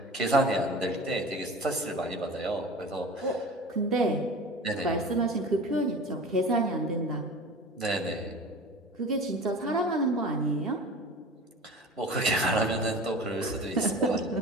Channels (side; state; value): both; normal; correlation 0.37